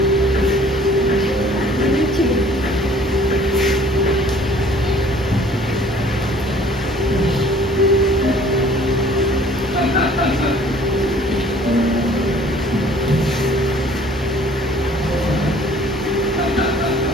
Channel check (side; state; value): both; normal; correlation 0.54